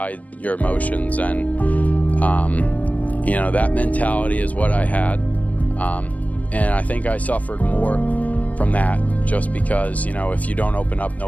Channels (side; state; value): right; late; 0.073 ms